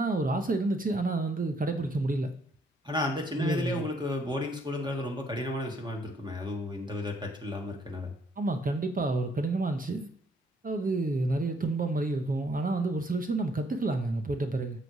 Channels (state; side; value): normal; both; correlation 0.68